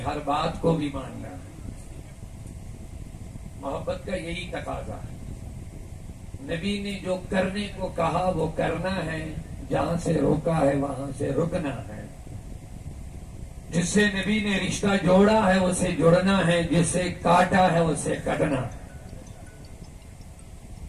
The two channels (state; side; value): identical; both; correlation 1.00